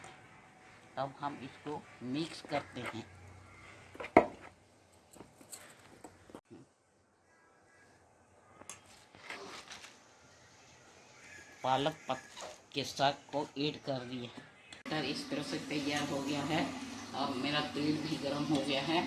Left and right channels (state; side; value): identical; both; correlation 1.00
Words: अब हम इसको मिक्स करते हैं। पालक के साग को ऐड कर दिए। मटर इस तरह से तैयार हो गया है और मेरा तेल भी गर्म हो गया है।